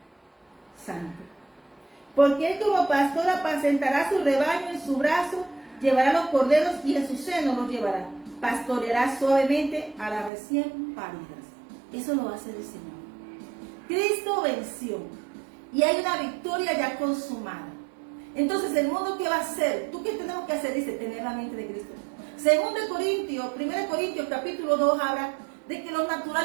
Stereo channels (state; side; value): drops out; left; at 10.3 s